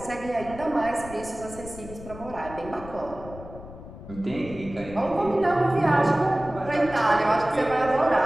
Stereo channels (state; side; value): noise; left; rumble, 15 dB below the sound